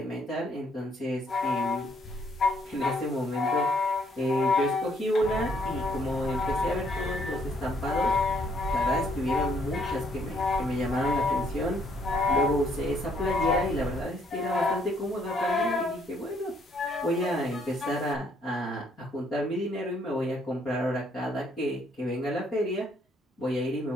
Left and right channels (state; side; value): normal; both; correlation 0.68